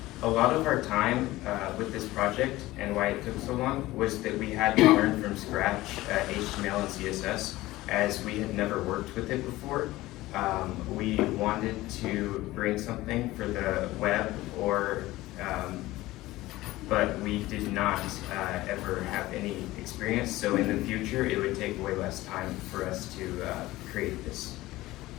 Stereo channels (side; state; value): right; quieter; 17.8 dB